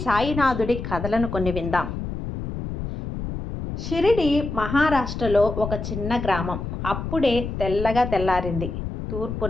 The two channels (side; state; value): left; noise; rumble, 6 dB below the sound